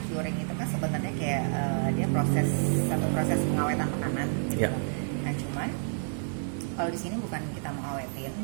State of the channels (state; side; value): silent; left; digital silence